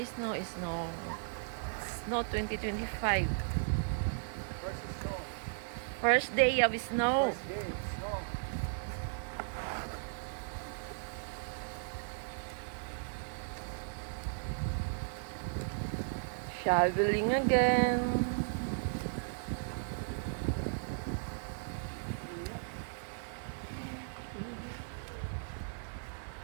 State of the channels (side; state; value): left; silent; 54 dB below the other